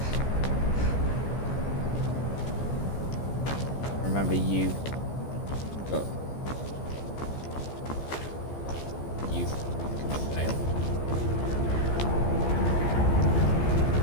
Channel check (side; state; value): right; late; 14 ms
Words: Remember, you got. You can fail.